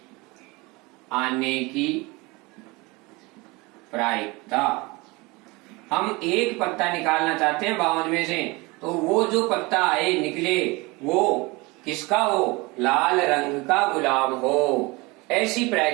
आने की प्रायिकता। हम एक पत्ता निकालना चाहते हैं 52 में से, तो वो जो पत्ता आए निकले वो किसका हो? लाल रंग का गुलाम हो। ऐसी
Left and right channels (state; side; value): quieter; left; 24.6 dB